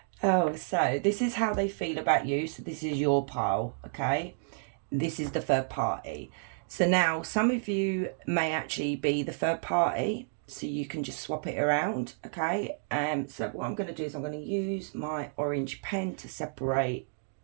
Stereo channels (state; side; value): silent; left; digital silence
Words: Oh, so this is how they feel about you. So this is your pile, okay? This is the third party. So now some of you may actually be the third party, so you can just swap it around, okay? So what I'm going to do is I'm going to use my orange pen to separate